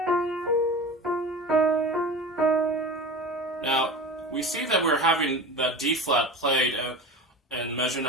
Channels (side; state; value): both; normal; correlation 0.32